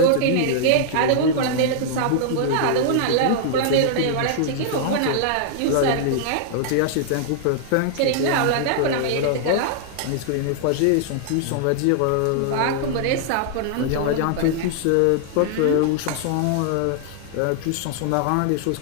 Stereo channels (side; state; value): both; different; correlation -0.01